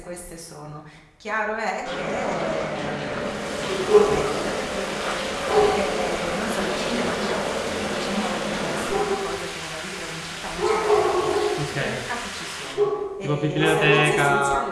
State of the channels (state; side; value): identical; both; correlation 1.00